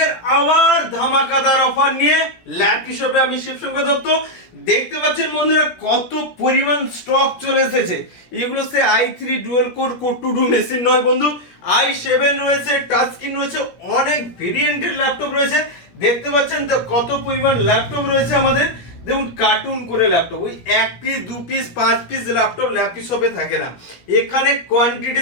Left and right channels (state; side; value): late; right; 17 ms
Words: আবার ধামাকাদার offer নিয়ে ল্যাপি শপে আমি শিবশঙ্কর দত্ত। দেখতে পাচ্ছেন বন্ধুরা কত পরিমাণ স্টক চলে এসেছে। এগুলো সে i3 dual core core to do machine নয় বন্ধু, i7 রয়েছে, টাচ স্ক্রিন রয়েছে, অনেক ভেরিয়েন্টের ল্যাপটপ রয়েছে। দেখতে পাচ্ছেন তো কত পরিমাণ ল্যাপটপ রয়েছে আমাদের। দেখুন কার্টুন করে ল্যাপটপ, ওই 1 piece 2 piece 5 piece laptop lappy শপে থাকে না, এখানে